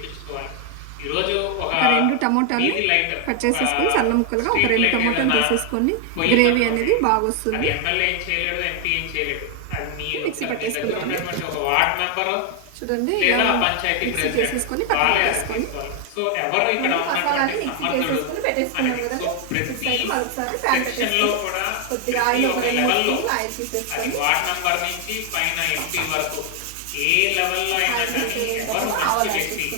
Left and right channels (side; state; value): both; different; correlation 0.01